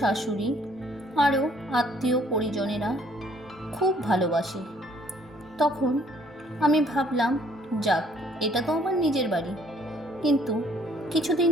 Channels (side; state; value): both; normal; correlation 0.62